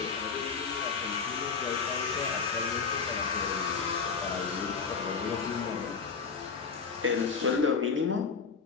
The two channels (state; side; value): quieter; right; 5.4 dB